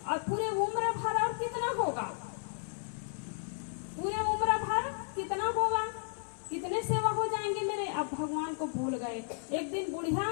और पूरे उम्र भर और कितना होगा, पूरे उम्र भर कितना होगा, कितने सेवा हो जाएंगे मेरे। अब भगवान को भूल गए। एक दिन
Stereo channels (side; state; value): right; silent; 55 dB below the other